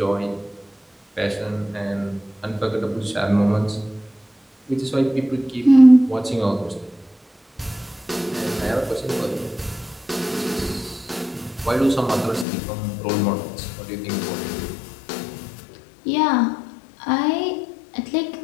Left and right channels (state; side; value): drops out; right; at 12.5 s